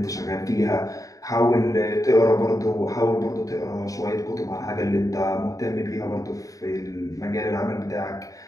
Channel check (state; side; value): late; right; 0.16 ms